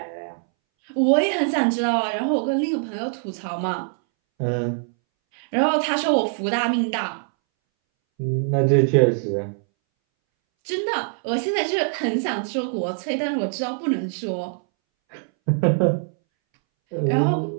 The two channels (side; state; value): left; silent; 62 dB below the other